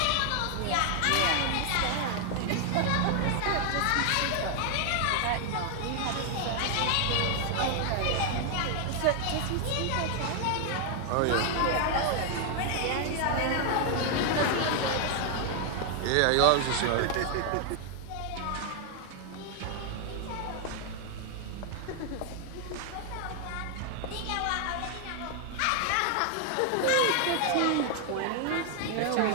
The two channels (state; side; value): different; both; correlation 0.00